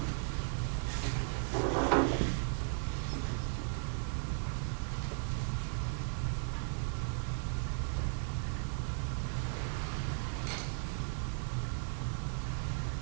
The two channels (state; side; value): silent; left; 54 dB below the other